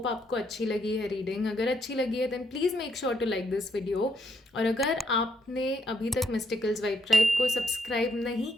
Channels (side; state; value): both; normal; correlation 0.75